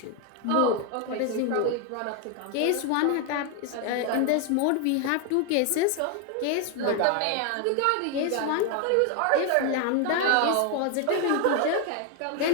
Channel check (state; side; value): different; both; correlation 0.01